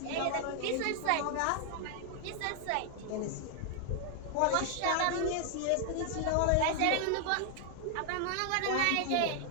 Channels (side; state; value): both; different; correlation 0.00